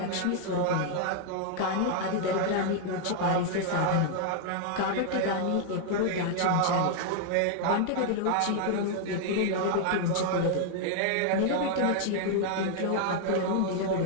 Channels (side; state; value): both; different; correlation 0.00